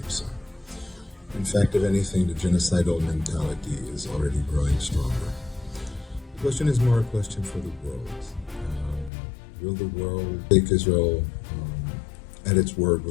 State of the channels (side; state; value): right; drops out; at 9.1 s